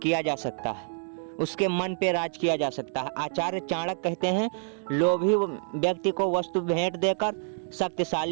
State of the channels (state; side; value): silent; left; 60 dB below the other